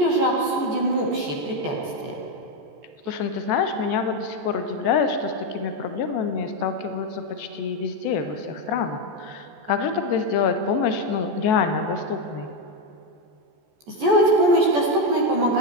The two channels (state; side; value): late; left; 14 ms